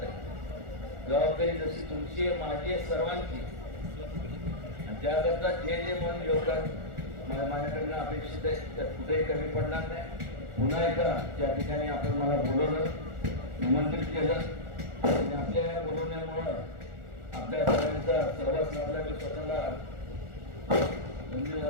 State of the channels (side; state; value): left; late; 1.4 ms